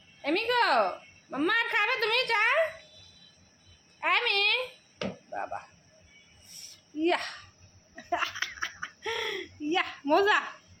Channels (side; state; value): both; identical; correlation 1.00